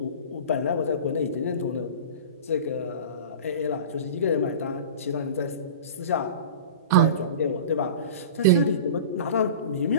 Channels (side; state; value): both; inverted; correlation -0.34